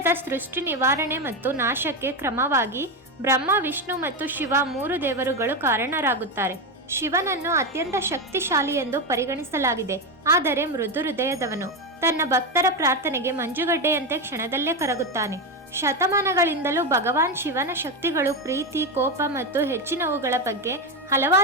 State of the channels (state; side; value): normal; both; correlation 0.12